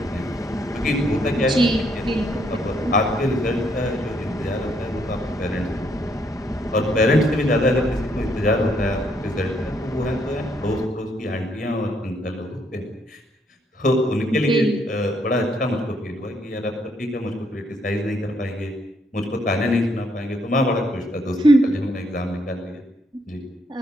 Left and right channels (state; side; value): normal; both; correlation 0.72